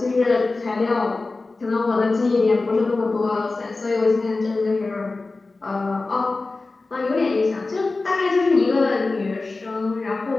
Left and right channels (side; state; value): right; quieter; 3.5 dB